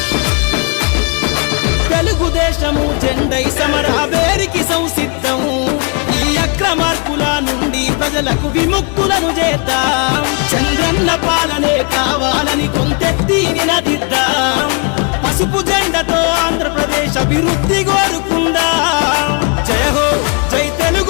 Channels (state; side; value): quieter; right; 35.2 dB